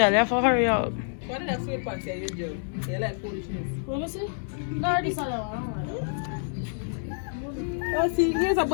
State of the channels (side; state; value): right; silent; digital silence